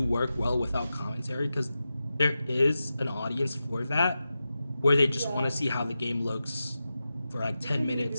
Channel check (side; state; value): both; inverted; correlation -0.92